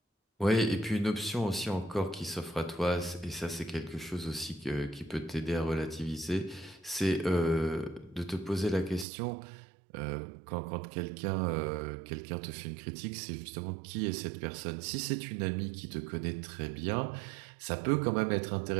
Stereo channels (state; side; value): drops out; left; at 9.1 s